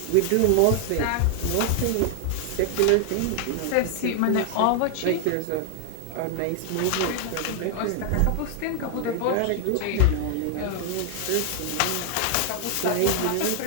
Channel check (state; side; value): different; both; correlation 0.00